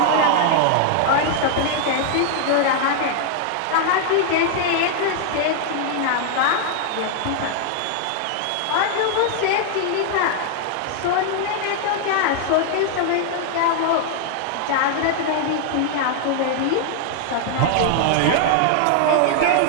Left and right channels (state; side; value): different; both; correlation 0.00